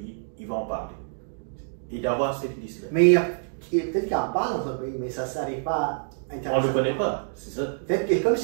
il va en parler. Et d'avoir cette liste-là. Mais peut-être qu'il en parle dans son pays, mais ça ne s'arrive pas on ne le connaît pas, c'est ça. Peut-être que, comme je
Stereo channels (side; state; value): left; silent; digital silence